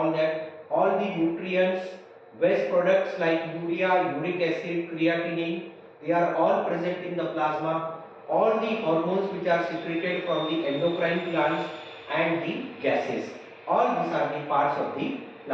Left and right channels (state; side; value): identical; both; correlation 1.00